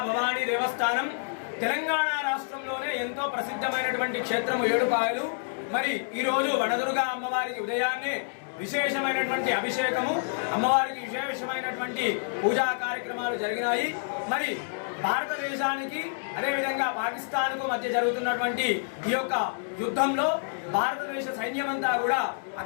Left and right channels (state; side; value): silent; right; digital silence